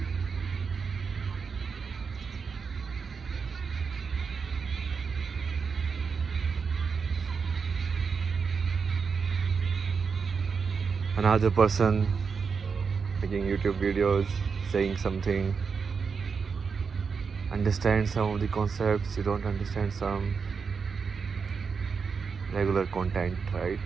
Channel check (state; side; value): quieter; left; 5.6 dB